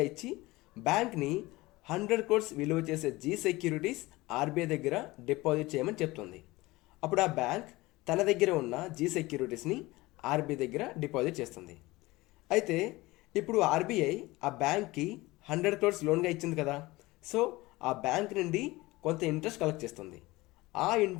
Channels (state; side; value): quieter; right; 20.5 dB